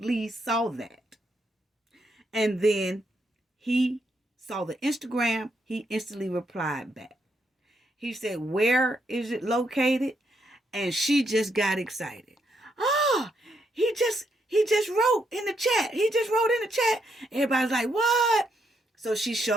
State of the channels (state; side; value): normal; both; correlation 0.78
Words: saw that. And then he saw the Instagram. He instantly replied back. He said, where is it located? And she just got excited. Oh, he just wrote in the chat. Everybody's like, what? So she